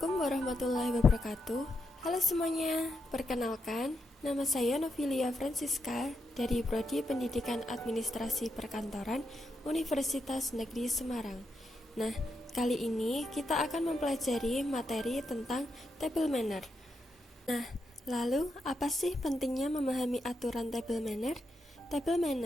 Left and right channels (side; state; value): both; normal; correlation 0.83